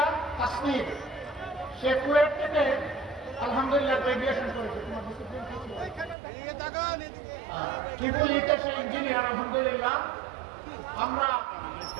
কাশ্মীর, সে কুয়েট থেকে আলহামদুলিল্লাহ গ্রাজুয়েশন করেছে। ট্রিপল ইতে সে ইঞ্জিনিয়ার আলহামদুলিল্লাহ। আমরা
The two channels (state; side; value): drops out; left; at 6.2 s